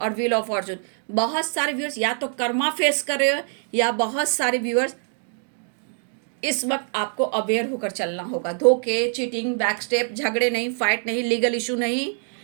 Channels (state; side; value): silent; left; 56 dB below the other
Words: व्हील ऑफ फॉर्चून। बहुत सारे व्यूअर्स या तो कर्मा फेस कर रहे हो, या बहुत सारे व्यूअर्स इस वक्त आपको अवेयर होकर चलना होगा। धोखे, चीटिंग, बैक स्टेप, झगड़े नहीं, फाइट नहीं, लीगल इशू नहीं।